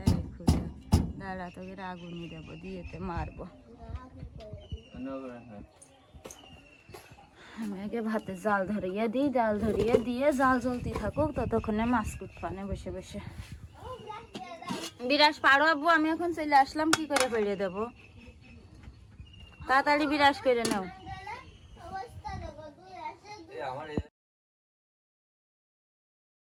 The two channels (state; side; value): identical; both; correlation 1.00